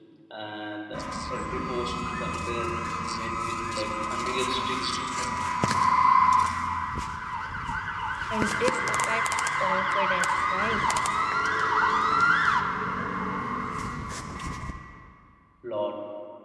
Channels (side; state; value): both; identical; correlation 1.00